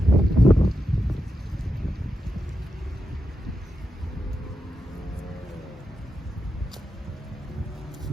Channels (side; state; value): both; normal; correlation 0.86